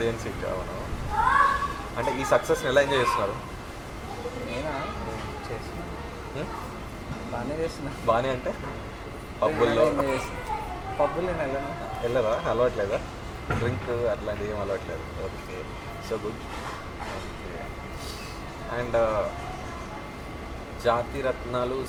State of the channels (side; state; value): both; identical; correlation 1.00